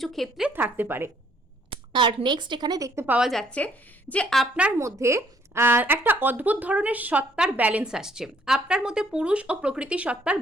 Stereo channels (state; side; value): normal; both; correlation 0.65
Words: ক্ষেত্রে থাকতে পারে। আর নেক্সট এখানে দেখতে পাওয়া যাচ্ছে যে আপনার মধ্যে একটা অদ্ভুত ধরনের সত্তার ব্যালেন্স আসছে, আপনার মধ্যে পুরুষ ও প্রকৃতি সত্তার